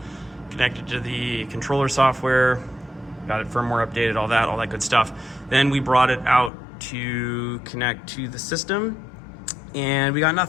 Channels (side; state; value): right; drops out; at 6.5 s